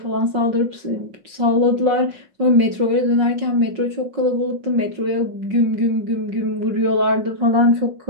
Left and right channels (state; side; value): late; left; 5.5 ms